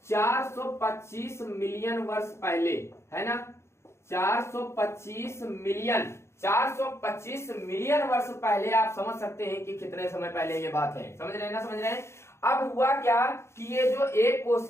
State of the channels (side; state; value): right; late; 0.13 ms